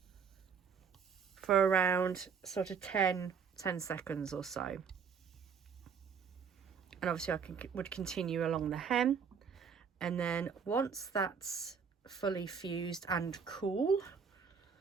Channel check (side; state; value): left; quieter; 6.4 dB